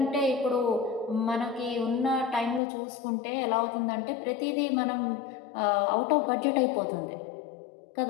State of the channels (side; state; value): right; drops out; at 2.6 s